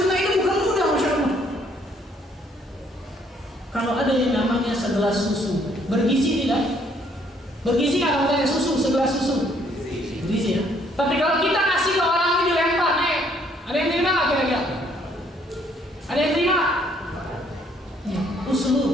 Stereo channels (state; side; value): normal; both; correlation 0.65